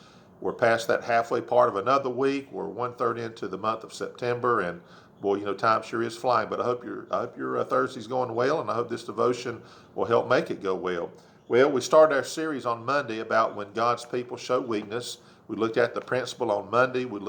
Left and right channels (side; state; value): both; identical; correlation 1.00